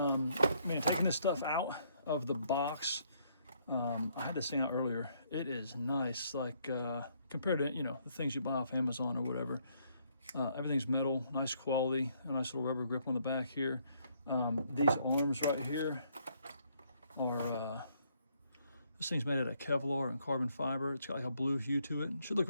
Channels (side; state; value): both; inverted; correlation -0.70